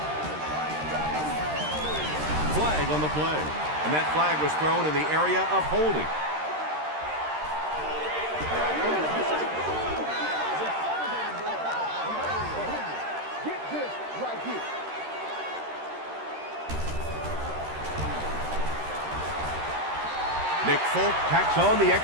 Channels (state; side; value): late; left; 13 ms